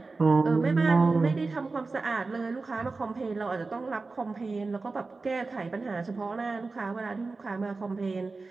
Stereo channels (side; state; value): left; quieter; 3.8 dB